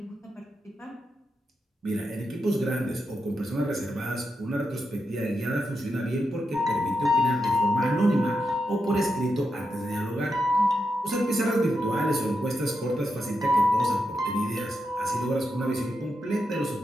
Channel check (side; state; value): both; normal; correlation 0.86